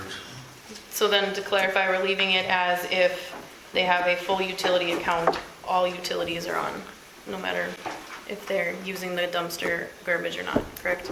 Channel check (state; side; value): identical; both; correlation 1.00